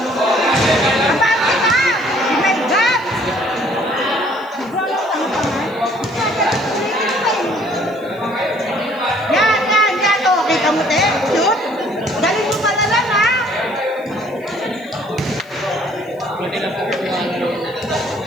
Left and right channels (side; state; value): left; noise; hiss, 29 dB below the sound